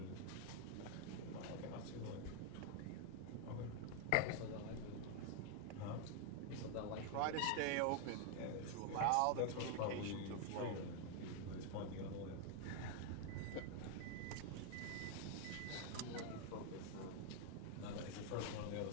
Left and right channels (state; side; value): different; both; correlation 0.00